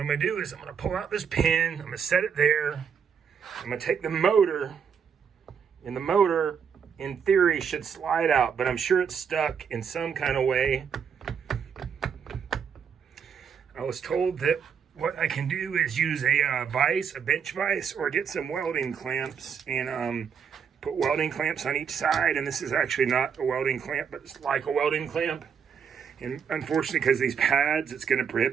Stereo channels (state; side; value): quieter; left; 7.1 dB